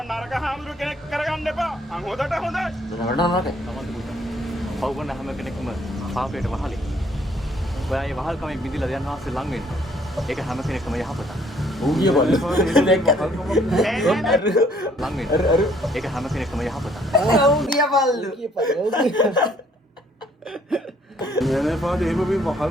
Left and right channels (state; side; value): normal; both; correlation 0.63